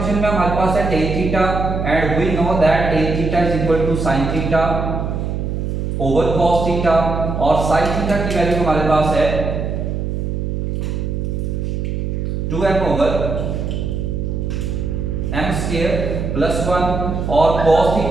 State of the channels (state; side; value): noise; right; hum, 2 dB below the sound